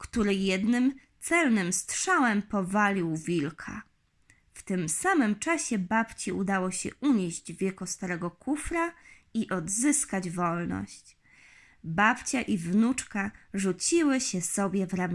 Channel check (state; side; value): identical; both; correlation 1.00